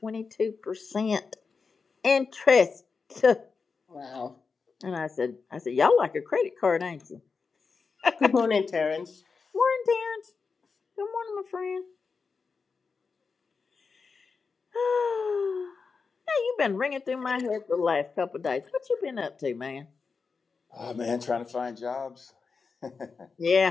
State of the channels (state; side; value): quieter; right; 4.9 dB